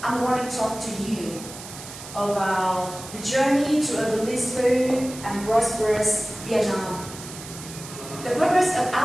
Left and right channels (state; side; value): noise; right; hiss, 13 dB below the sound